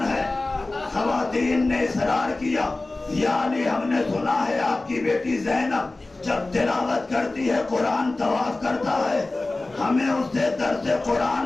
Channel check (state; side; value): quieter; right; 3.1 dB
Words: ہے, خواتین نے اصرار کیا یا علی ہم نے سنا ہے آپ کی بیٹی زینب جب تلاوت کرتی ہے قرآن طواف کرتا ہے, ہمیں اس سے درس قرآن